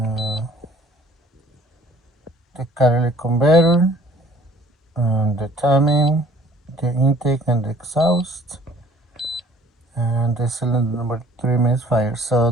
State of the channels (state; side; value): normal; both; correlation 0.55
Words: the catalytic converter, the timing, the intake and the exhaust, and the cylinder number 3 misfire. So